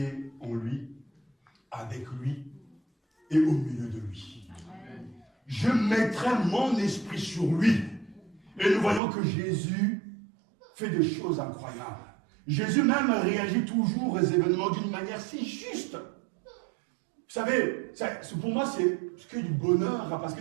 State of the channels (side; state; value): left; drops out; at 9.0 s